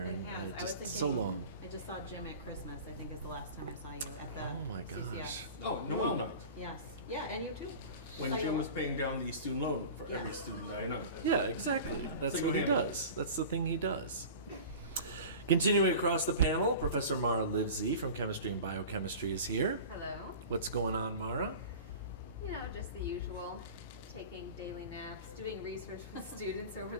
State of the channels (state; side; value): inverted; both; correlation -0.36